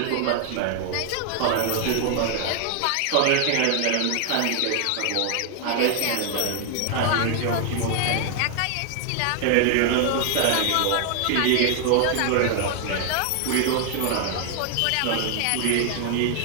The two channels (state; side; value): different; both; correlation 0.00